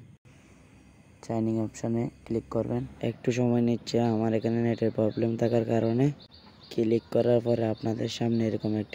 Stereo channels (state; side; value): identical; both; correlation 1.00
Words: সাইন ইন অপশনে ক্লিক করবেন। একটু সময় নিচ্ছে, আমার এখানে নেটের প্রবলেম থাকার কারণে। ক্লিক করার পরে আপনাদের সামনে এরকম